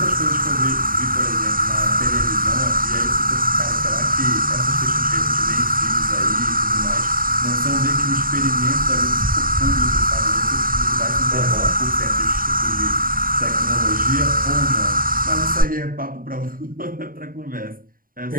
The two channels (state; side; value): late; left; 0.41 ms